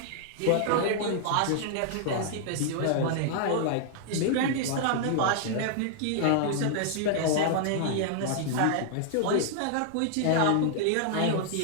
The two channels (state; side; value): different; both; correlation -0.01